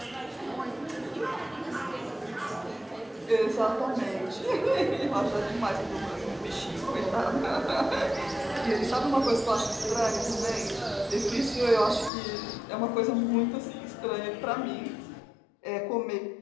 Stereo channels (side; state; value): right; drops out; at 12.1 s